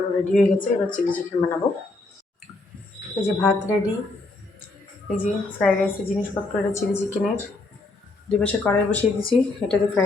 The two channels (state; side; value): quieter; right; 3.1 dB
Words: রেডি হয়ে গেছে, এবার চিলি চিকেন বানাবো। এই যে ভাত রেডি, এই যে ফ্রাইড রাইসের জিনিসপত্র, এটা চিলি চিকেনের। 2 পাশে কড়াই বসিয়ে দিয়েছি, এটাতে